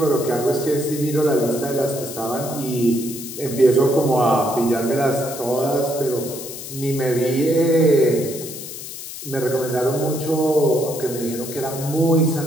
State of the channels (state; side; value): noise; left; hiss, 10 dB below the sound